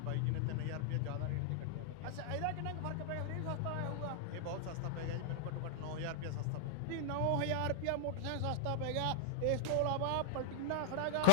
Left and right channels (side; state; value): both; different; correlation -0.01